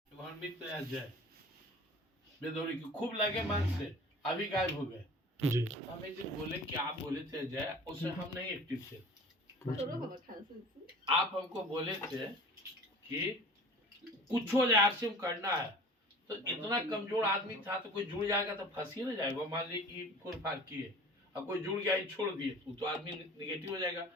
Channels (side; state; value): both; normal; correlation 0.43